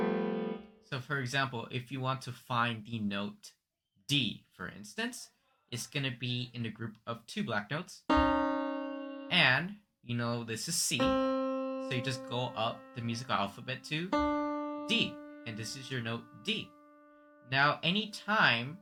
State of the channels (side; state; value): both; identical; correlation 1.00